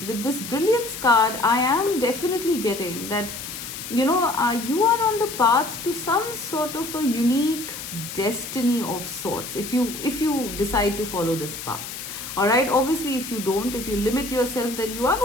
With this brilliance card, I am definitely getting that, you are on the path to some sort of a unique destiny of sorts, if you decide to follow this path. All right, obviously if you don't, if you limit yourself, then you are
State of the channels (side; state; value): left; noise; hiss, 9 dB below the sound